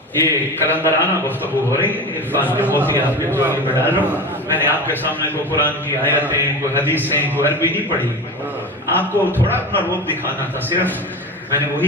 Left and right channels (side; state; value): both; normal; correlation 0.28